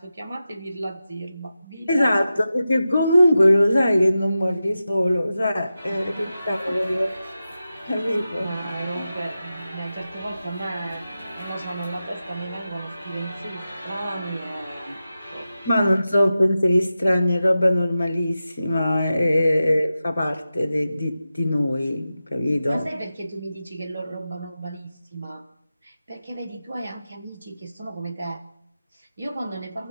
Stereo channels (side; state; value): both; inverted; correlation -0.92